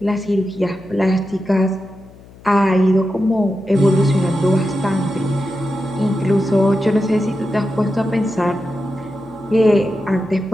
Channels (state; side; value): noise; left; hum, 22 dB below the sound